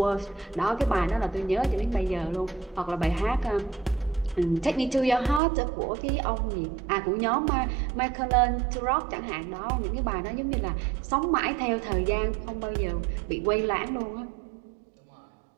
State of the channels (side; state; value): left; drops out; at 5.4 s